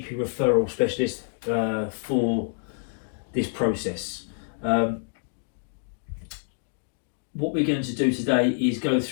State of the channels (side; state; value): right; silent; 60 dB below the other